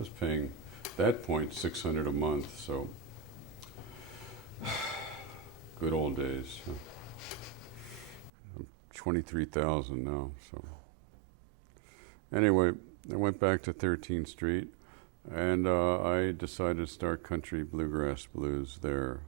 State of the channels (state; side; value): drops out; left; at 8.3 s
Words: paying, at that point, $600 a month, so good old days. 23,000 now. So anyway, I went back to 13th Street, and I decided to start country bluegrass blues there.